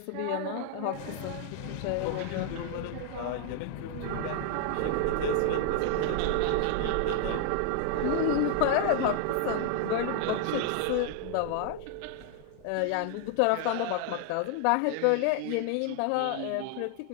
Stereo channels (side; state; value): both; different; correlation 0.00